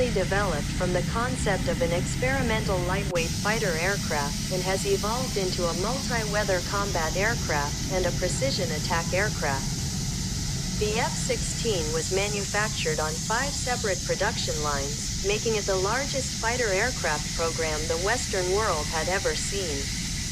developed from the concept of an experimental lightweight fighter aircraft and has evolved into a multi-weather combat aircraft and a precision attack aircraft. The F-16 was manufactured on 5 separate production lines, making it the largest fighter aircraft program the Western world had ever seen.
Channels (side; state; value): both; identical; correlation 1.00